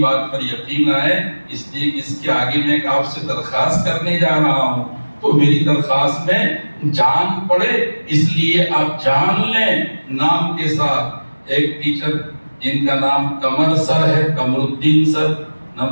پر یقین آئے، اس لیے کہ اس کے آگے میں آپ سے درخواست کرنے جا رہا ہوں تو میری درخواست میں جان پڑے، اس لیے آپ جان لیں نام کے ساتھ۔ ایک ٹیچر جن کا نام قمر سر ہے، قمر الدین سر،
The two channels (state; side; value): inverted; both; correlation -1.00